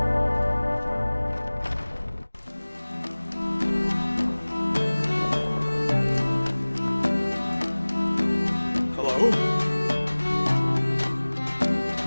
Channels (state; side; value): inverted; both; correlation -1.00